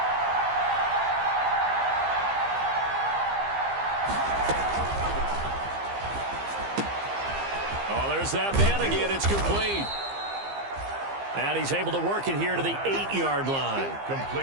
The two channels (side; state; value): left; late; 15 ms